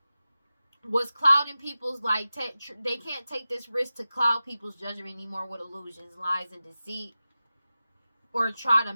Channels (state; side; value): inverted; both; correlation -0.94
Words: was clouding people's, they can't take this risk to cloud people's judgment anymore with illusions, lies, and deceit, or try to